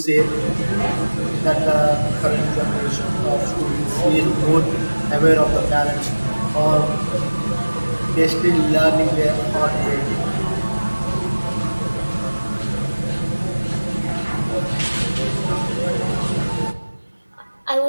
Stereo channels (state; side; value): inverted; both; correlation -1.00